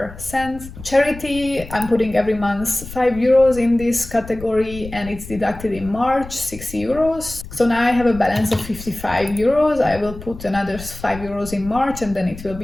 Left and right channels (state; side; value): noise; left; rumble, 14 dB below the sound